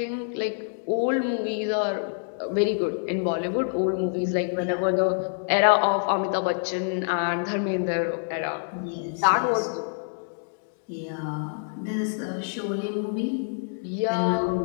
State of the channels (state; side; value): silent; right; digital silence